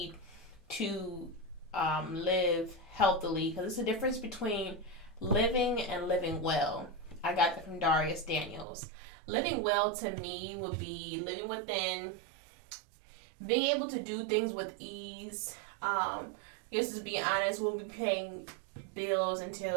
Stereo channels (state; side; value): drops out; left; at 8.7 s